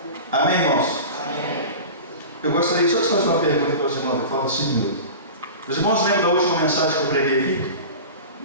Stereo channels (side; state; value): both; inverted; correlation -0.33